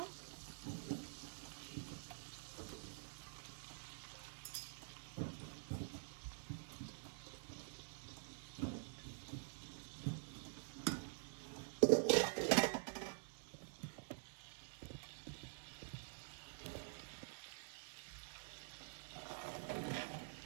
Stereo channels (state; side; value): silent; left; digital silence